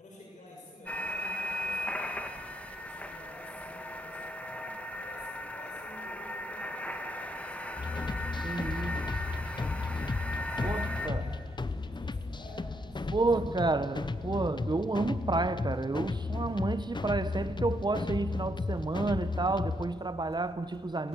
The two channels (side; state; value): both; normal; correlation 0.76